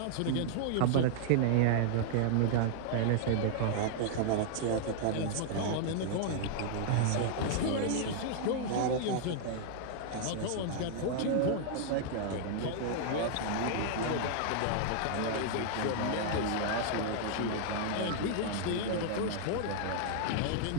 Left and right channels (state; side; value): different; both; correlation -0.01